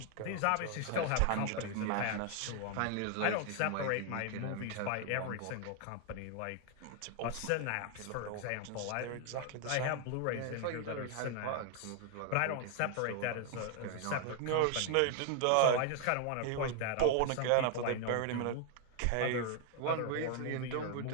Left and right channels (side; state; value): both; different; correlation 0.00